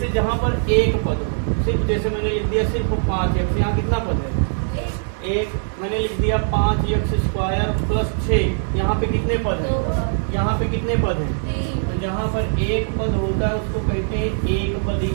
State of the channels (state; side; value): silent; left; digital silence